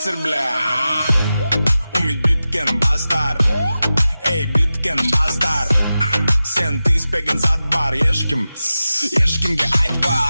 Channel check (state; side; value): inverted; both; correlation -0.94